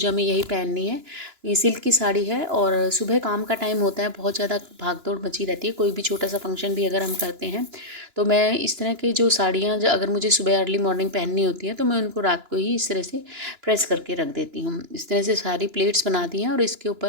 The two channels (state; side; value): late; left; 2.9 ms